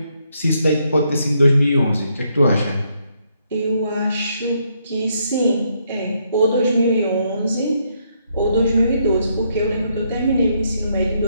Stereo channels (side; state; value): both; inverted; correlation -0.75